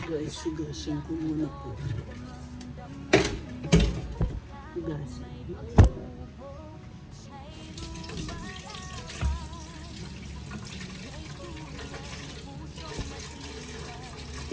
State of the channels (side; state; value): both; identical; correlation 1.00